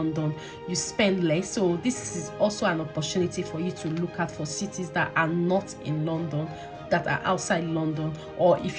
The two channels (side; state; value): both; identical; correlation 1.00